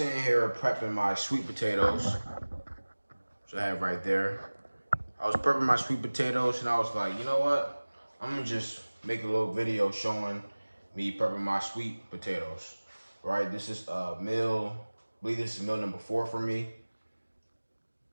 here prepping my sweet potatoes, which I have right there. I was prepping my sweet potatoes and I was like, you know what? I'm gonna just make a little video showing me prepping my sweet potatoes. Right, this is meal, I believe this is meal number 4 for me,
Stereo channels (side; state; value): both; inverted; correlation -1.00